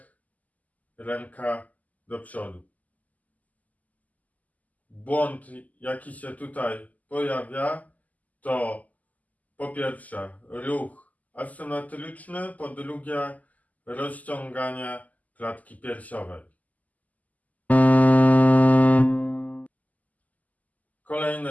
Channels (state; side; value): late; right; 0.077 ms